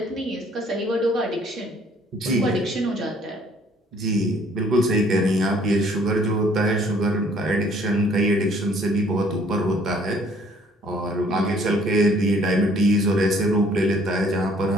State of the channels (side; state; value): both; normal; correlation 0.59